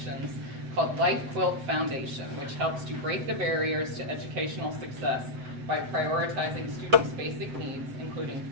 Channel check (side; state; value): left; late; 7.8 ms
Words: called Quilt Foundation, which helps to break the barriers to educational success by prioritizing students' basic needs, including